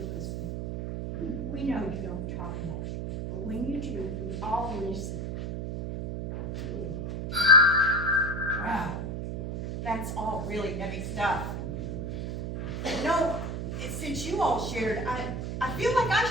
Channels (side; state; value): right; noise; hum, 4 dB below the sound